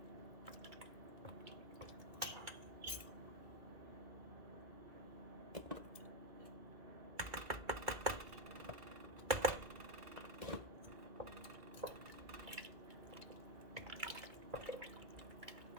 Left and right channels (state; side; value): late; left; 2.3 ms